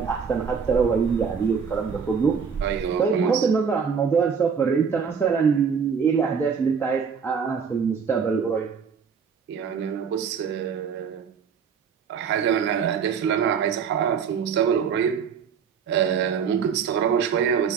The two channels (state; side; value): quieter; left; 6.5 dB